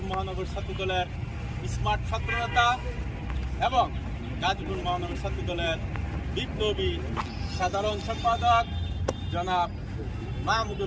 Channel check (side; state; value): both; identical; correlation 1.00